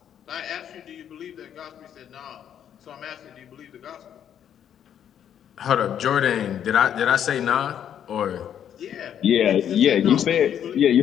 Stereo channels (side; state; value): right; quieter; 9.4 dB